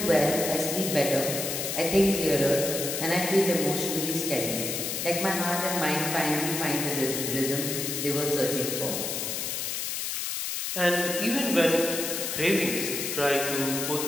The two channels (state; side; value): noise; left; hiss, 2 dB below the sound